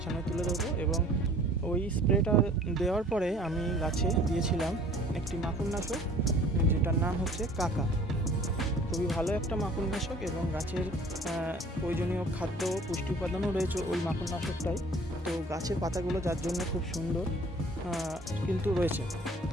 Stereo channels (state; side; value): normal; both; correlation 0.51